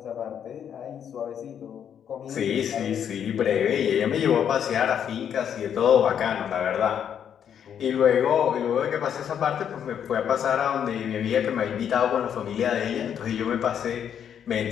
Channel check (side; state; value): right; quieter; 8.7 dB